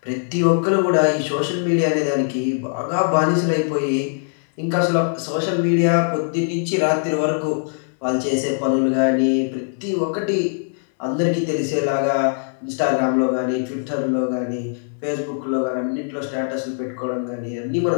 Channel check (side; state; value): right; silent; 65 dB below the other